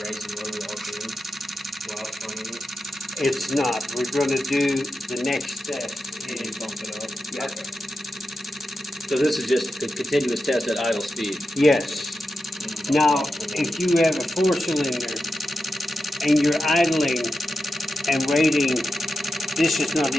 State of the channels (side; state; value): both; normal; correlation 0.89